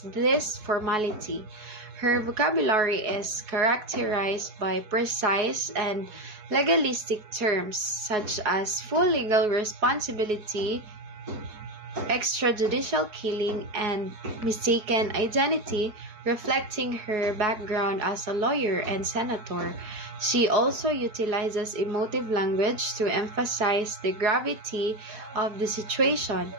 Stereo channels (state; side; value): late; left; 4.7 ms